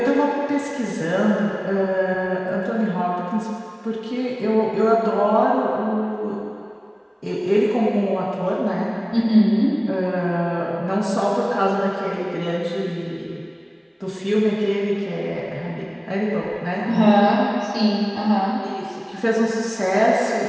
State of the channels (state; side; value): identical; both; correlation 1.00